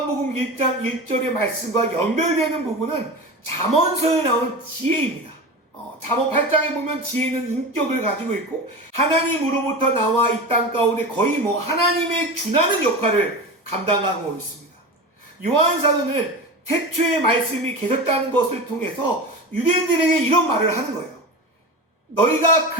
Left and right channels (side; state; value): both; normal; correlation 0.27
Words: 1장 1절의 말씀과 연결되는 부분은 잠언서에 나오는 지혜입니다. 잠언 8장에 보면 지혜는 인격을 가지고 있고, 하나님으로부터 나와 이 땅 가운데 거의 하나님의 준하는 역할을 감당하고 있습니다. 요한 사도는 태초에 말씀이 계셨다는 것을 통해서 유대인들에게 이런 말을 하는 거예요. 너희가